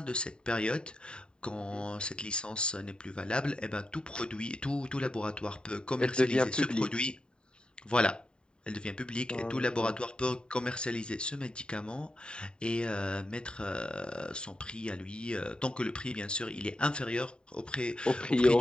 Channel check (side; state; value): right; late; 0.049 ms